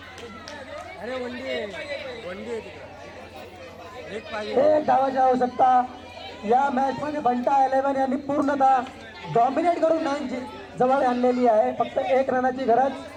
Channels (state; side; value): identical; both; correlation 1.00